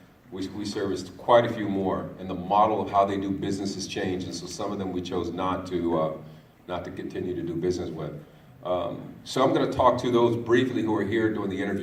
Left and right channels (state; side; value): identical; both; correlation 1.00